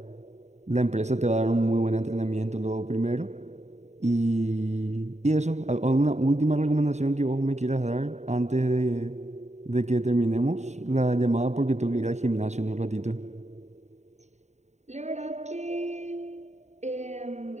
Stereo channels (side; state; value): left; late; 0.33 ms